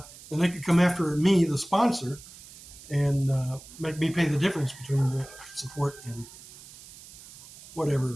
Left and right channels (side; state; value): right; noise; hiss, 19 dB below the sound